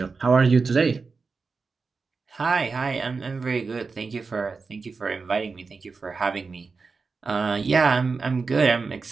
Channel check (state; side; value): quieter; left; 4.5 dB